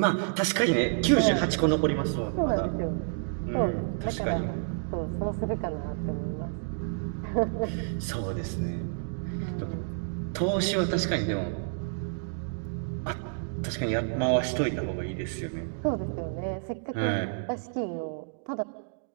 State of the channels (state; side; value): silent; left; digital silence